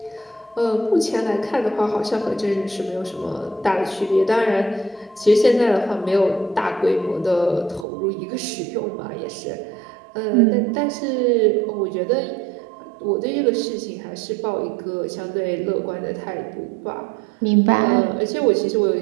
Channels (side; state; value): left; drops out; at 7.9 s